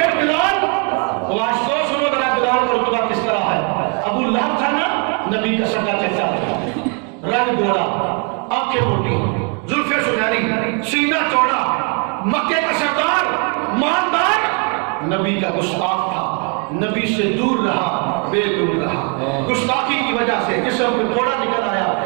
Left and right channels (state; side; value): quieter; left; 37.8 dB